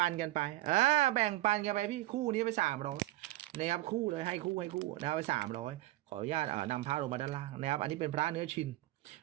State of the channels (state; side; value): quieter; left; 17.0 dB